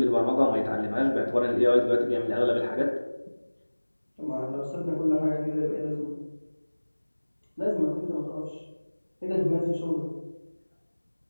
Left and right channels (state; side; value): inverted; both; correlation -1.00